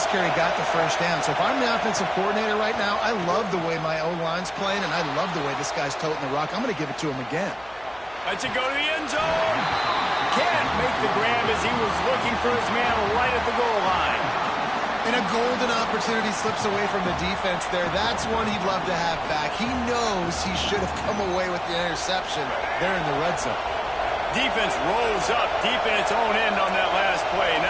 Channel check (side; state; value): left; noise; hum, 26 dB below the sound